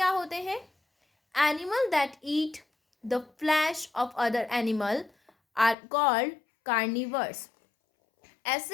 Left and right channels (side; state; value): right; drops out; at 5.8 s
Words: होते हैं? Animal that eat the flesh of other animal are called carnivores.